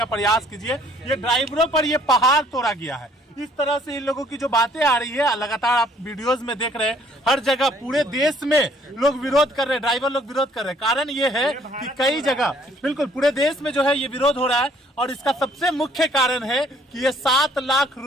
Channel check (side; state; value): both; normal; correlation 0.61